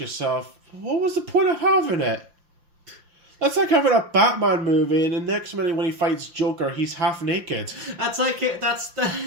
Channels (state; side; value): late; left; 5.7 ms